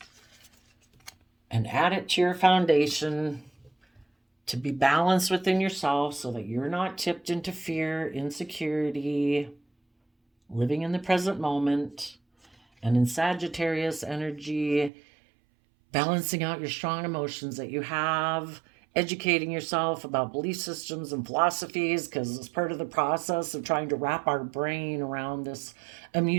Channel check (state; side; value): drops out; left; at 14.9 s